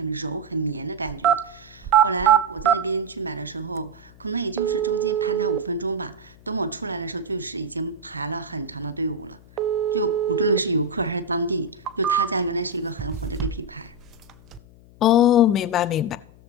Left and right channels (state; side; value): noise; left; hum, 24 dB below the sound